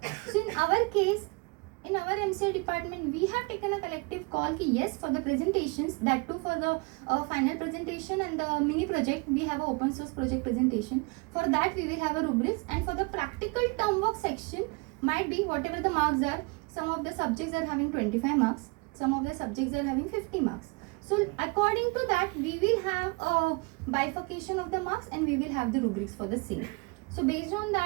So in our case, in our MCA department, we have taken a collective call ki yes, for the presentations, that too for the final presentation and the mini project, we have an open source project presentation. For that we will have a rubrics, and for the practical term work section, might be whatever the marks are, some of the subjects are having 25 marks, some of the subjects are having 50 marks. So according to that, we will have a bifurcation of the marks, and we will have the rubrics for the same. So based on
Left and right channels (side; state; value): left; quieter; 29.2 dB